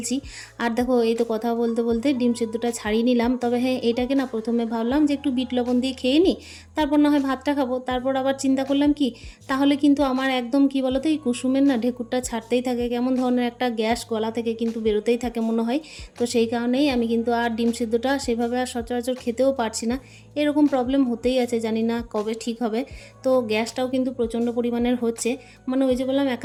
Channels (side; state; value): both; identical; correlation 1.00